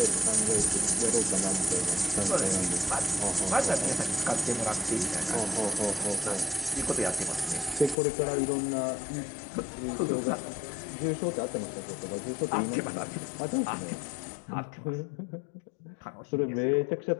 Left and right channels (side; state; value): right; drops out; at 8.0 s